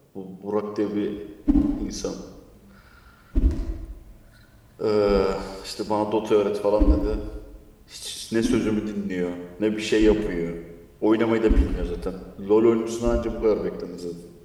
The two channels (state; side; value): identical; both; correlation 1.00